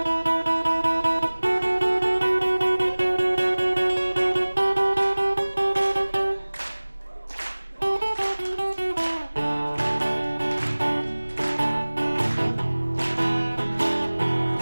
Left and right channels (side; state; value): both; inverted; correlation -1.00